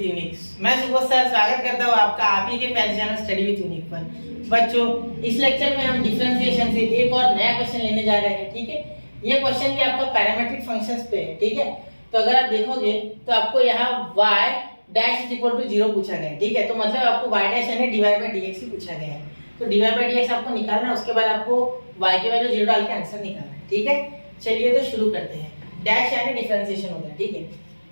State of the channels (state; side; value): inverted; both; correlation -1.00